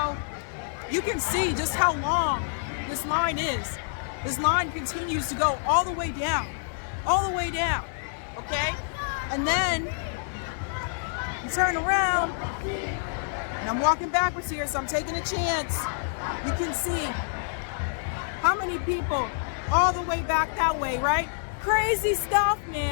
you can see just how long this line is. This line continues to go all the way down, okay? And then you turn around, and I'm walking backwards here, so I'm taking a chance. You can see how many people all the way back that way, right? Crazy stuff,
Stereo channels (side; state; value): right; silent; 56 dB below the other